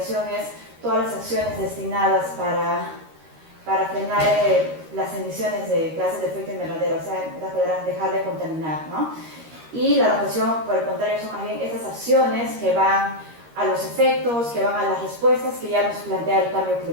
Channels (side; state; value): left; late; 13 ms